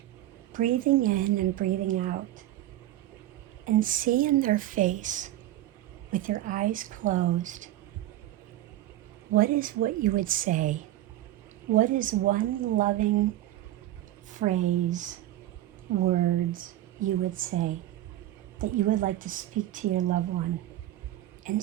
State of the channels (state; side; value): quieter; left; 14.0 dB